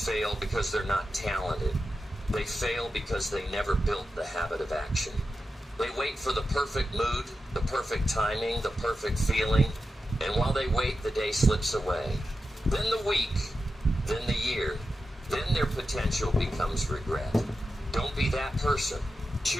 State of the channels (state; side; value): normal; both; correlation 0.90